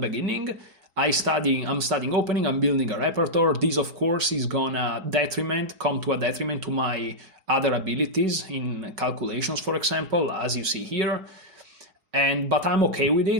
I'm studying opening, I'm building a repertoire. This, of course, is gonna come to a detriment to my other abilities in calculations, for example, as you see here. But I'm okay with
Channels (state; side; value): late; left; 5.2 ms